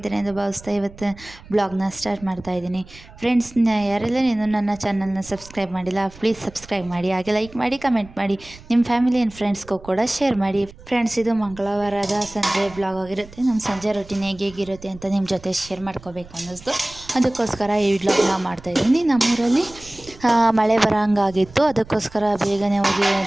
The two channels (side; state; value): right; noise; rumble, 20 dB below the sound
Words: ಎಂದು ಭಾವಿಸ್ತಾ ಇವತ್ತು ಬ್ಲಾಗ್ನ ಸ್ಟಾರ್ಟ್ ಮಾಡ್ತಾ ಇದ್ದೀನಿ. ಫ್ರೆಂಡ್ಸ್, ಯಾರೆಲ್ಲ ಇನ್ನೂ ನನ್ನ ಚಾನಲ್ನ ಸಬ್ಸ್ಕ್ರೈಬ್ ಮಾಡಿಲ್ಲ, ಪ್ಲೀಸ್ ಸಬ್ಸ್ಕ್ರೈಬ್ ಮಾಡಿ, ಹಾಗೆ ಲೈಕ್ ಮಾಡಿ, ಕಮೆಂಟ್ ಮಾಡಿ, ನಿಮ್ಮ ಫ್ಯಾಮಿಲಿ ಆ್ಯಂಡ್ ಫ್ರೆಂಡ್ಸ್ಗೂ ಕೂಡ ಶೇರ್ ಮಾಡಿ. ಫ್ರೆಂಡ್ಸ್, ಇದು ಮಂಗಳವಾರದ ಸಂಜೆ ಬ್ಲಾಗ್ ಆಗಿರುತ್ತೆ. ನಮ್ಮ ಸಂಜೆ ರೊಟೀನ್ ಹೇಗಿರುತ್ತೆ ಅಂತ ನಿಮ್ಮ ಜೊತೆ ಶೇರ್ ಮಾಡ್ಕೋಬೇಕು ಅನ್ನಿಸ್ತು. ಅದಕ್ಕೋಸ್ಕರ ಈ ವ್ಲಾಗ್ನ ಮಾಡ್ತಾಯಿದ್ದೀನಿ. ನಮ್ಮೂರಲ್ಲಿ ಮಳೆ ಬರೋಂಗಾಗಿತ್ತು. ಅದಕ್ಕೋಸ್ಕರ ಬೇಗನೆ ಹೋಗಿ